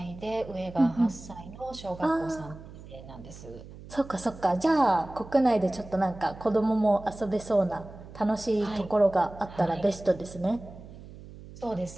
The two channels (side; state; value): right; noise; hum, 16 dB below the sound